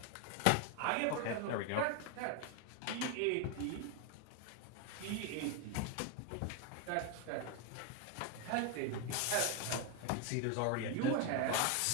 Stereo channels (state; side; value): different; both; correlation 0.01